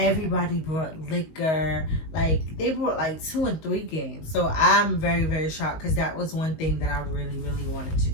brought liquor. Like, they brought like 2 and 3 games. So I'm very, very shocked because that was one thing that I really, really wanted to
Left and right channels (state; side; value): late; right; 19 ms